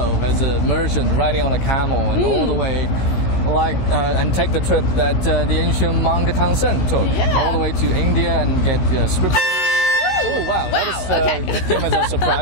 as a merchant riding on a camel and all the way, and take the trip that the ancient monk Tang Sen took, all the way to India and get scripture. Oh wow, that came as a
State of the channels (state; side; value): late; right; 16 ms